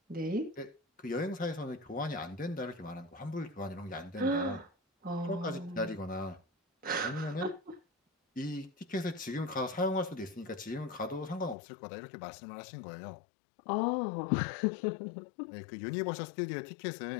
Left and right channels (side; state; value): right; drops out; at 11.6 s